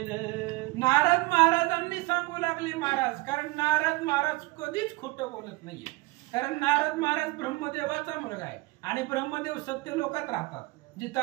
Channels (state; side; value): quieter; left; 22.5 dB